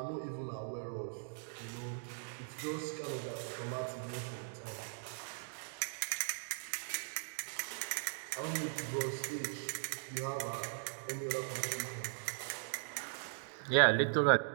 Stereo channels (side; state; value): left; silent; digital silence